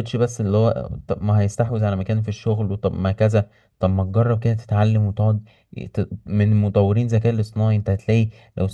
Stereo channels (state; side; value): identical; both; correlation 1.00